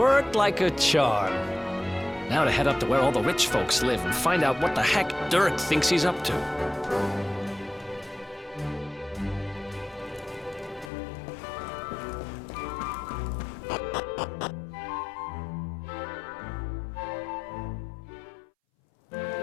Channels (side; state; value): right; drops out; at 10.9 s